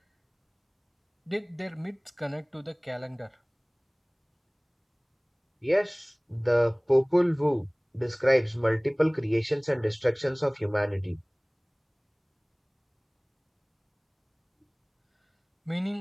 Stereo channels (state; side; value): identical; both; correlation 1.00